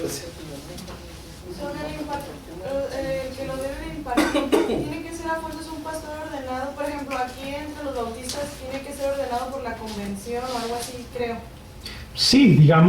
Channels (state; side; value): identical; both; correlation 1.00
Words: Que lo debe impartir, tiene que ser a fuerzas un pastor ordenado. Por ejemplo, aquí entre los bautistas tiene que ser ordenado por la convención o algo así, creo. Sí,